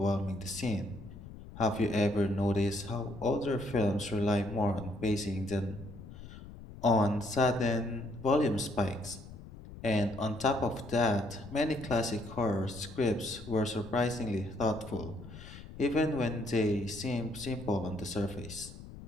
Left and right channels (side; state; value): left; noise; rumble, 15 dB below the sound